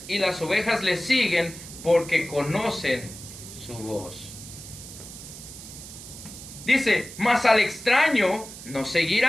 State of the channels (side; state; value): right; noise; hiss, 14 dB below the sound